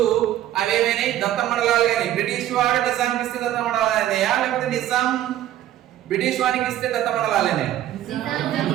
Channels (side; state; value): left; quieter; 12.7 dB